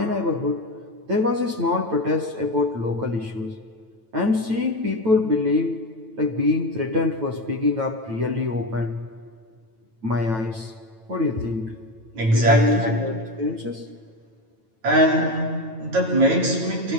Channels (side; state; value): left; late; 9.1 ms